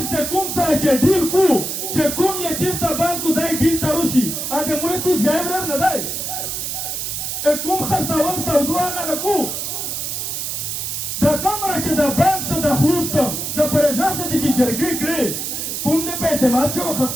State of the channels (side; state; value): right; noise; hiss, 4 dB below the sound